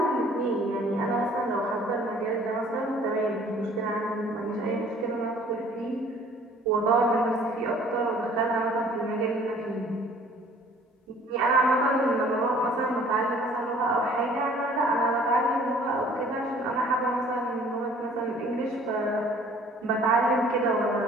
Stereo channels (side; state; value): both; normal; correlation 0.54